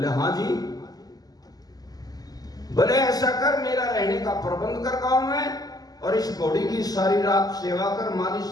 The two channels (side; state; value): right; late; 0.18 ms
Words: हाँ जी। बोले ऐसा कर, मेरा रहने का प्रबंध कर गांव में और इस घोड़ी की सारी रात सेवा कर, मालिश